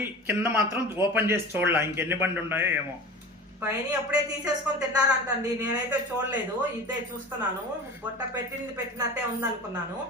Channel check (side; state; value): both; normal; correlation 0.35